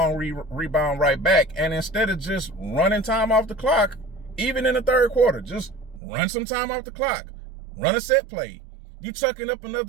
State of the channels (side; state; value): left; drops out; at 6.0 s